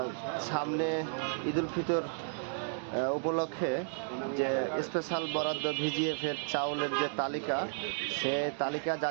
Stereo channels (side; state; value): left; silent; digital silence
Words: সামনে ঈদুল ফিতর উপলক্ষে যে স্পেশাল বরাদ্দ ভিজিএফের চাউলের যে তালিকা, সে তালিকা